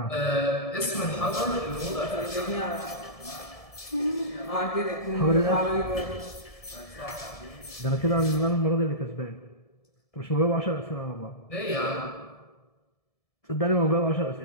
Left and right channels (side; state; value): right; late; 1.7 ms